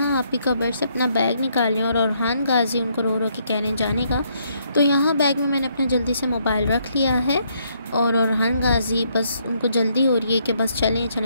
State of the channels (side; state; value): both; inverted; correlation -0.72